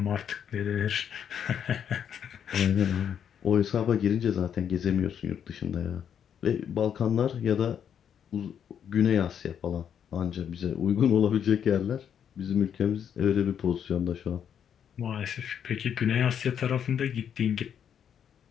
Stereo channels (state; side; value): quieter; right; 8.5 dB